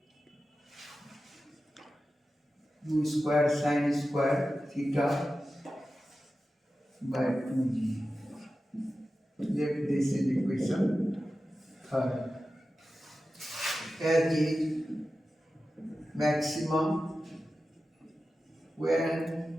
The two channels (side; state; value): both; normal; correlation 0.93